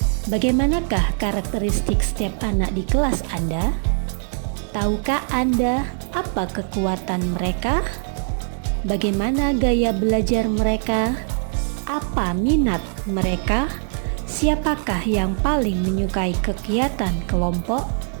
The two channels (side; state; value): left; silent; 55 dB below the other